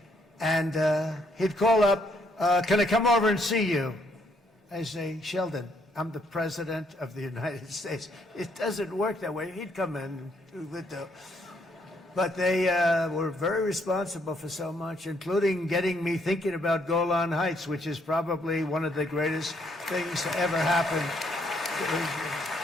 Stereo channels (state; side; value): normal; both; correlation 0.71